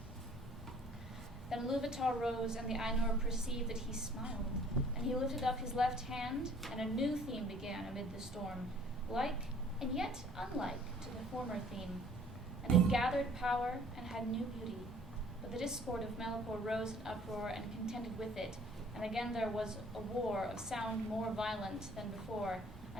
Then Iluvatar rose, and the Ainur perceived that he smiled, and he lifted up his left hand, and a new theme began amid the storm, like and yet unlike to the former theme, and it gathered power and had new beauty. But the discord of Melkor rose in uproar and contended with it, and again there was a war of sound more violent than before,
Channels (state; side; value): normal; both; correlation 0.55